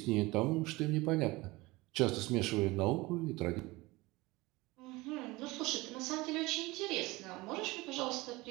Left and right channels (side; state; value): left; quieter; 21.7 dB